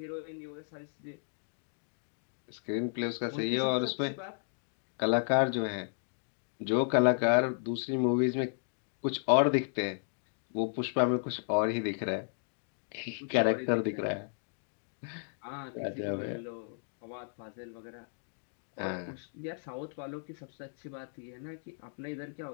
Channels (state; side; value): silent; right; digital silence